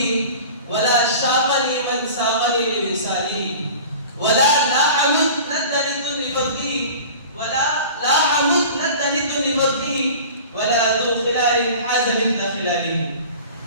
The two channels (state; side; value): inverted; both; correlation -0.39